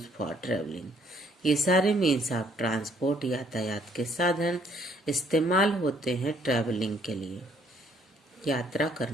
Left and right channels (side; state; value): both; normal; correlation 0.65